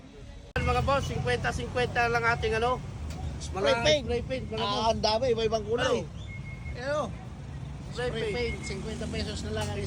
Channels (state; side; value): identical; both; correlation 1.00